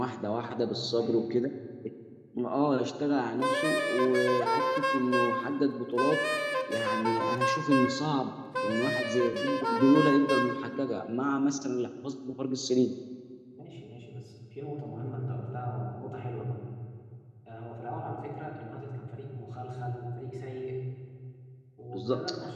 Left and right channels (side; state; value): both; identical; correlation 1.00